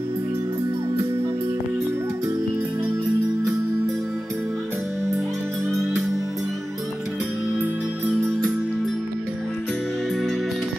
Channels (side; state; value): both; normal; correlation 0.95